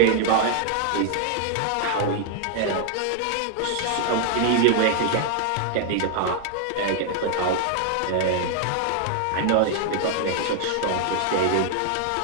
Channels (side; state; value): both; different; correlation 0.00